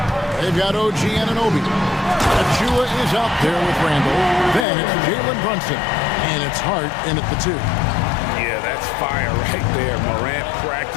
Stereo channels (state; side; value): drops out; right; at 4.7 s